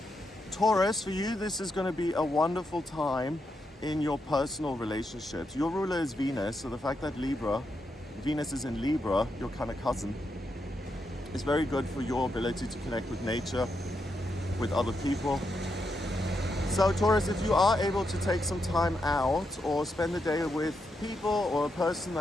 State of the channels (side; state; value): both; normal; correlation 0.83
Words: Taurus, for you, this is going to be a wonderful time in your personal relationships. Your ruler is Venus, so the fact that Venus is in Libra, your kind of cousin, is very good for your ability to connect with nature, with other people. So Taurus, if you are able to take some time out or spend the day with people or a person